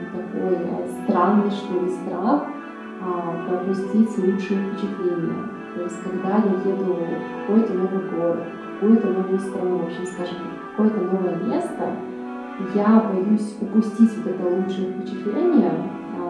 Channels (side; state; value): both; identical; correlation 1.00